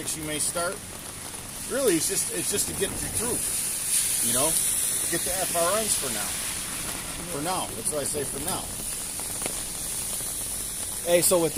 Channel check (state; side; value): identical; both; correlation 1.00